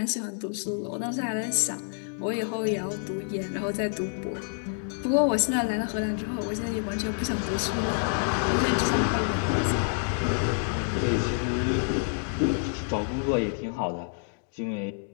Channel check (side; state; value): right; silent; digital silence